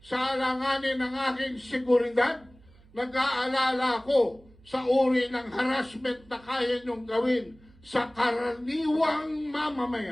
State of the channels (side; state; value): right; noise; hum, 27 dB below the sound